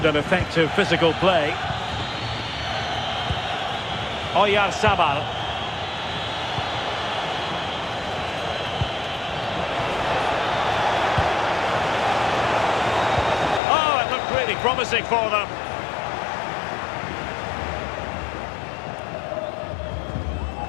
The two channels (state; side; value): drops out; right; at 13.6 s